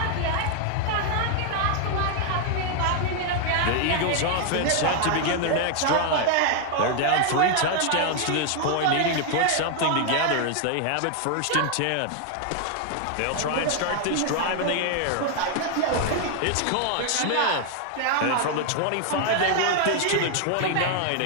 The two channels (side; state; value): both; different; correlation 0.00